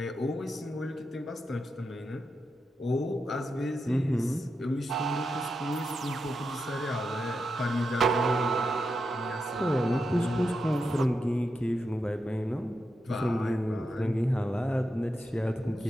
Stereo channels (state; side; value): normal; both; correlation 0.86